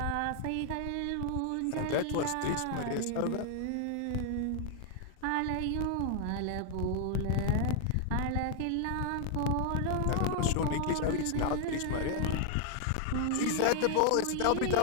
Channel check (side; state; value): both; different; correlation 0.00